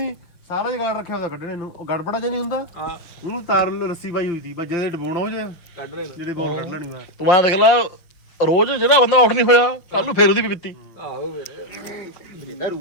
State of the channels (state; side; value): late; right; 5.9 ms